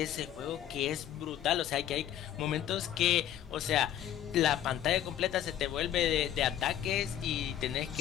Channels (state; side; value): quieter; right; 11.3 dB